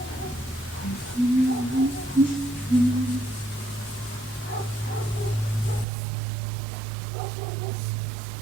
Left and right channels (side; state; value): left; drops out; at 5.9 s